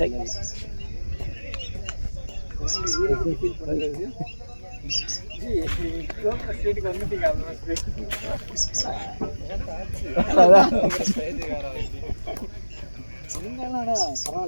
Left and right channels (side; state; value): both; inverted; correlation -1.00